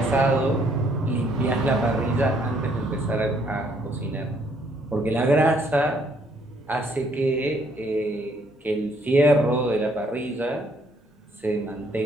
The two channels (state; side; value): normal; both; correlation 0.67